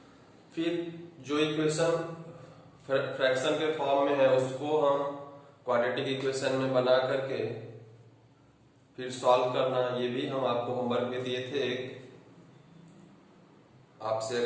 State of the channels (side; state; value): both; identical; correlation 1.00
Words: फिर जो इक्वेशन फ्रैक्शन के फॉर्म में है उसको हम क्वाड्रेटिक इक्वेशन में बना करके फिर सॉल्व करना, ये भी हम आपको होमवर्क में दिए थे। आपसे